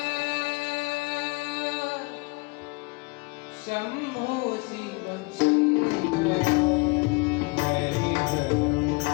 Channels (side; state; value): right; quieter; 28.0 dB